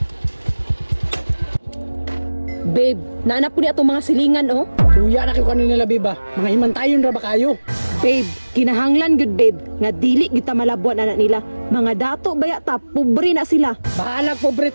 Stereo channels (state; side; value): inverted; both; correlation -1.00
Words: Babe, naanap ko ni atong mga silingan oh. Tuya na kayo kanina babe ba? Mga himantayon ra ba kayo? Babe, kinahanglan gud babe, nga dili kita malabuan anak nila. Mga dato baya ta, pobre na sila. Bahalag pobre